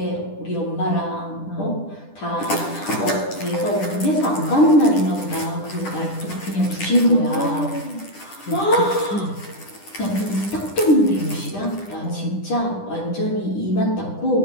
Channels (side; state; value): right; late; 10 ms